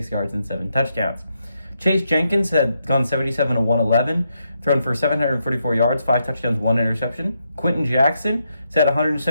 yards and 7 touchdowns. Chase Jenkins had gone 77 to 111, thrown for 744 yards, 5 touchdowns, 1 interception. Quentin Jackson has had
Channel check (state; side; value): inverted; both; correlation -0.81